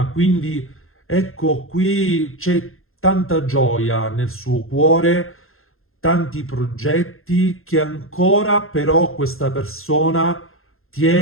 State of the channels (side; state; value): right; late; 0.61 ms